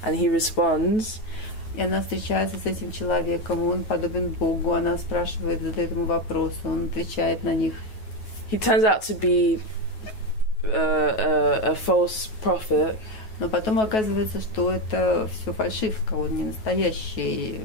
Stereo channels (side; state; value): right; late; 9.3 ms